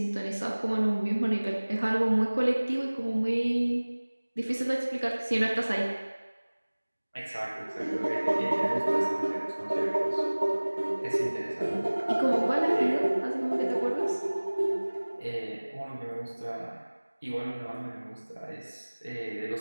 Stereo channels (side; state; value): both; inverted; correlation -1.00